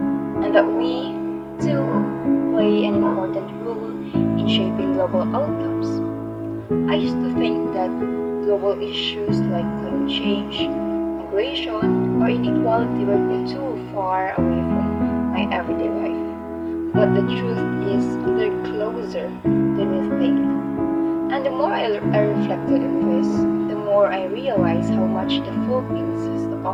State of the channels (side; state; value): both; identical; correlation 1.00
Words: and that we too play an important role in shaping global outcomes. I used to think that global issues like climate change, migration, or inequality were too far away from my everyday life. But the truth is, they're closer than we think. And the more I reflected on this, the more I realized how much the Philippines has to